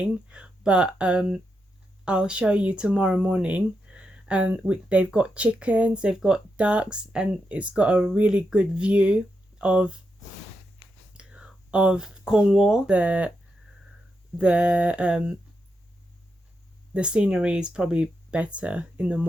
but I'll show you tomorrow morning. And they've got chickens, they've got ducks, and it's got a really good view of Cornwall. The scenery is probably better in the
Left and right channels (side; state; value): both; normal; correlation 0.85